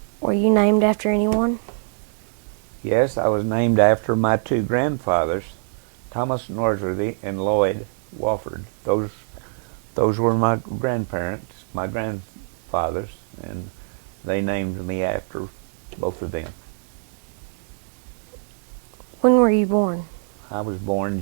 Were you named after anyone? Yes, I was named after my two grandfathers, Thomas Norsworthy and Lloyd Wofford. Those were my grandparents, my grandfathers, and they named me after both of them. When were you born? I was born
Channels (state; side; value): silent; left; 63 dB below the other